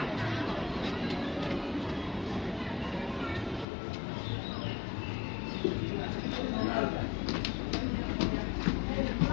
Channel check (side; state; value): right; drops out; at 3.7 s